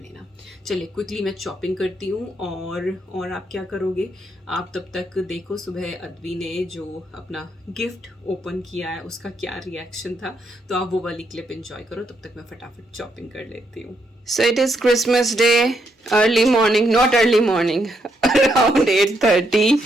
चलिए क्विकली मैं चॉपिंग करती हूँ। और आप क्या करोगे, आप तब तक देखो सुबह अद्वी ने जो अपना गिफ्ट ओपन किया है उसका क्या रिएक्शन था, तो आप वो वाली क्लिप एंजॉय करो, तब तक मैं फटाफट चॉपिंग कर लेती हूँ। So it is Christmas Day, early morning, not early morning, around 8:30,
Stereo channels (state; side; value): normal; both; correlation 0.77